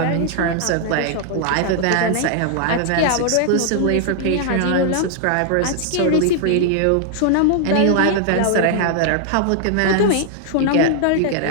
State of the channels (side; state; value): both; different; correlation 0.00